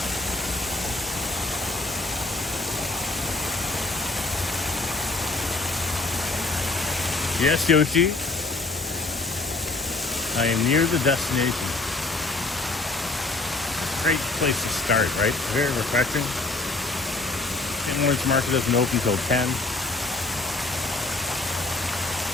Yes, Yoshi. I am near the destination. Great place to start, right? Very refreshing. St. Lawrence Market doesn't open until 10.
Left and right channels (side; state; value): right; quieter; 3.3 dB